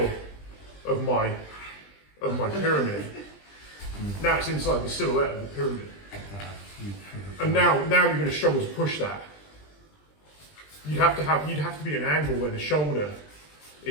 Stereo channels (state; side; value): late; right; 20 ms